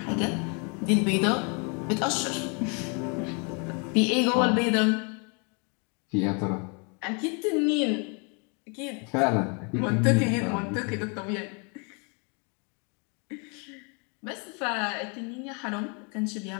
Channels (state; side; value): quieter; right; 35.5 dB